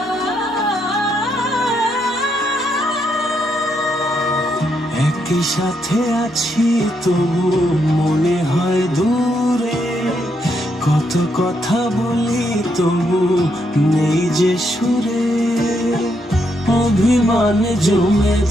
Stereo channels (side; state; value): both; normal; correlation 0.78